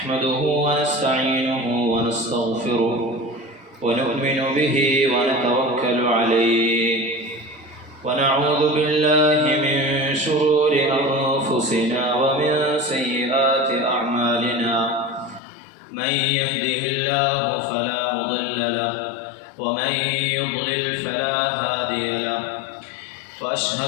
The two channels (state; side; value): drops out; right; at 15.4 s